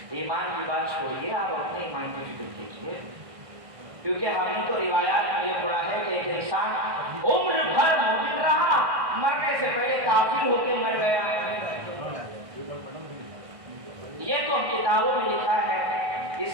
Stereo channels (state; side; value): late; left; 1.6 ms